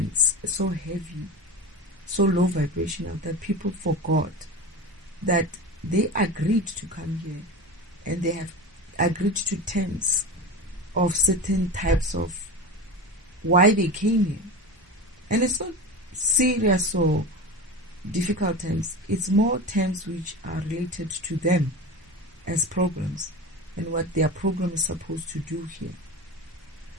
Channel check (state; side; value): normal; both; correlation 0.28